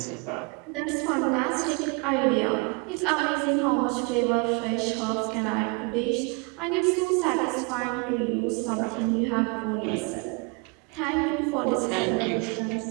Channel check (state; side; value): quieter; left; 31.1 dB